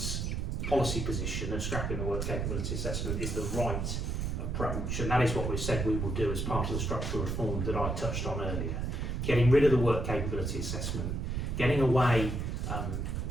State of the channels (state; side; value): noise; right; rumble, 1 dB below the sound